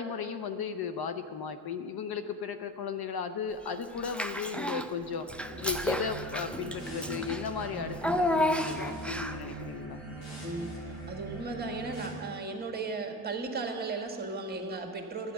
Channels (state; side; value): normal; both; correlation 0.29